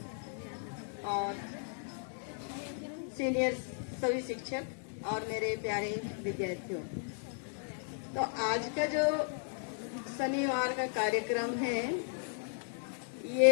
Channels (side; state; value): right; silent; 54 dB below the other